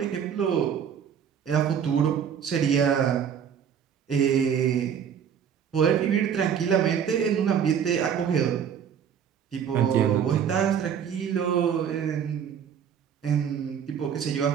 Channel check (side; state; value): left; quieter; 8.1 dB